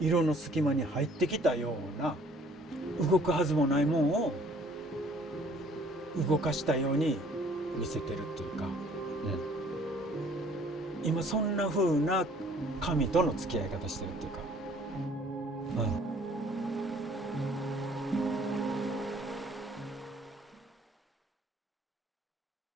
の隙間に入ってきたような、動くはずもないもんを動かしたように見せてるっていうか、今そんな風な紙との付き合い方してるっていうか、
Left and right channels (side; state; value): both; normal; correlation 0.57